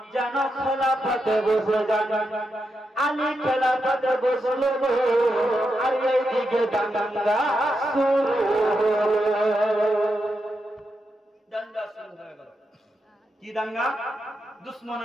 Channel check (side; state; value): both; normal; correlation 0.85